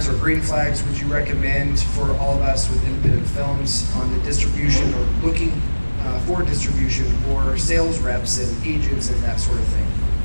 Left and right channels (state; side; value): inverted; both; correlation -1.00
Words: or green flags would you recommend for all of us with independent films on the distribution or looking for distribution or sales reps and agents and that sort of thing?